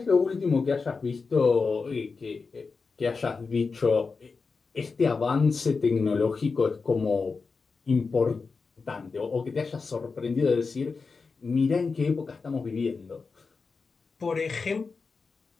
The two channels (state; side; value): quieter; right; 4.6 dB